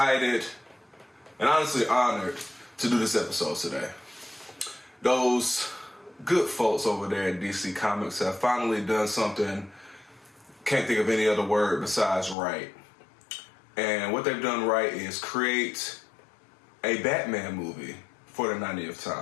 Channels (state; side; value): drops out; right; at 12.4 s